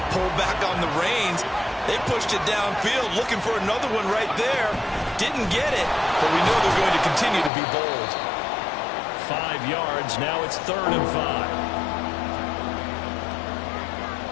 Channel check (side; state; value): right; drops out; at 7.5 s